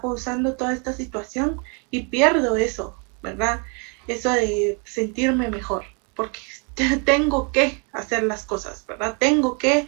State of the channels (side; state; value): left; quieter; 35.1 dB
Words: toda esta situación y pierdo eso, ¿verdad? Eso de sentirme mejor, porque tengo que hacer las cosas, ¿verdad? Tengo que